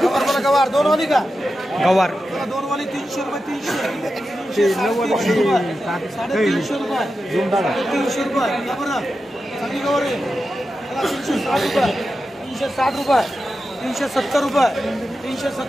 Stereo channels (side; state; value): both; normal; correlation 0.91